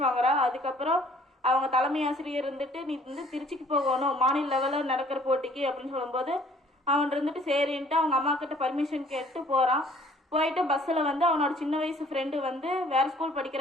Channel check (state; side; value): normal; both; correlation 0.57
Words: வாங்குறா. அதுக்கப்புறம் அவங்க தலைமை ஆசிரியர் இருந்துட்டு நீ வந்து திருச்சிக்கு போகணும் மாநில லெவலில் நடக்கிற போட்டிக்கு அப்படின்னு சொல்லும்போது அவன் இருந்துட்டு சரின்ட்டு அவங்க அம்மா கிட்ட பர்மிஷன் கேட்டு போகிறான். போயிட்டு பஸ்ஸில் வந்து அவனோட சின்ன வயசு ஃப்ரெண்டு வந்து வேறு ஸ்கூல்